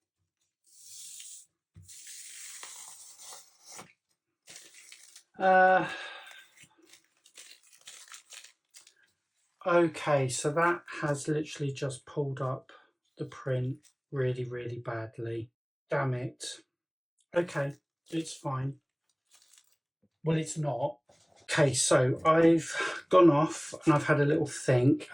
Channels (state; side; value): identical; both; correlation 1.00